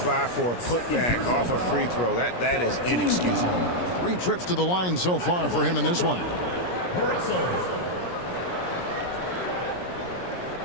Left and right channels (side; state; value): right; late; 17 ms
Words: by for a putback off a free throw, that is inexcusable. 3 trips to the line so far for him in this one.